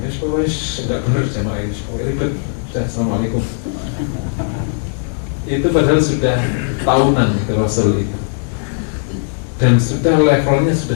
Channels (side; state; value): right; silent; digital silence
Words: Ya pokoknya enggak benar jamaah ini, pokoknya ribet. Sudah, assalamualaikum. Itu padahal sudah tahunan itu Rasul itu. Dan sudah levelnya